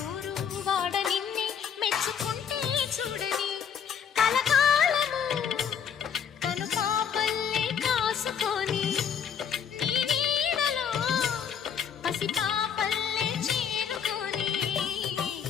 ఊరు వాడ నిన్నే మెచ్చుకుంటే చూడని కలకాలము కను పాపల్లే కాసుకొని నీ నీడలో పసిపాపల్లే చేరుకొని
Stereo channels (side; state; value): right; quieter; 7.7 dB